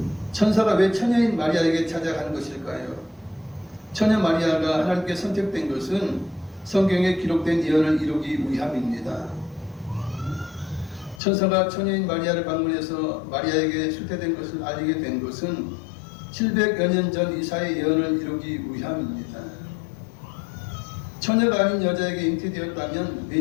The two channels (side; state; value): right; drops out; at 11.2 s